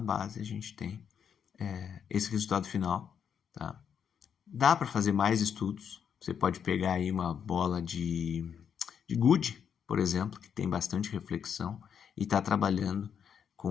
a gente tem esse resultado final, tá? Dá para fazer mais estudos, você pode pegar aí uma bola de gude, por exemplo, que tem bastante reflexão e está trabalhando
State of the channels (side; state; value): right; quieter; 7.7 dB